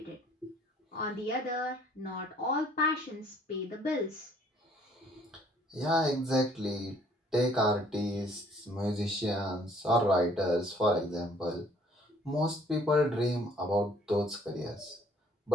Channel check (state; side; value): normal; both; correlation 0.59